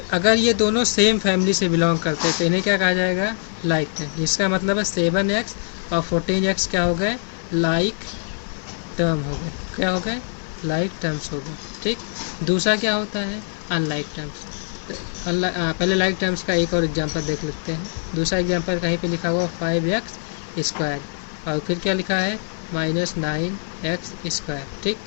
अगर ये दोनों सेम फैमिली से बिलोंग करते हैं तो इन्हें क्या कहा जाएगा, लाइक टर्म, जिसका मतलब है 7x और 14x क्या हो गए, लाइक टर्म हो गए, क्या हो गए, लाइक टर्म्स हो गए, ठीक। दूसरा क्या होता है, अनलाइक टर्म्स। पहले लाइक टर्म्स का एक और एग्जांपल देख लेते हैं। दूसरा एग्जांपल कहीं पे लिखा हुआ 5x² और फिर क्या लिखा है -9x², ठीक।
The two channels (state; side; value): silent; right; digital silence